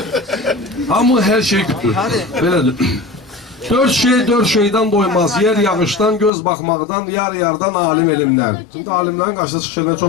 Amma hər şey güdür, belədir. 4 şeydən doymaz, yer yağışdan, göz baxmaqdan, yar-yardan, alim elimdən. Şimdi alimlərin qarşısına çıxışlarına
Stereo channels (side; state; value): right; drops out; at 6.3 s